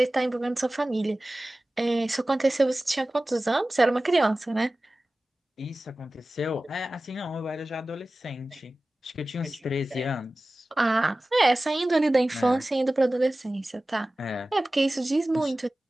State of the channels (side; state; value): both; normal; correlation 0.97